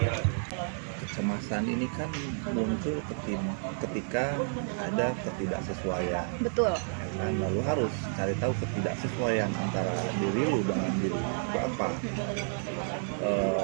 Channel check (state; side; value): silent; left; 57 dB below the other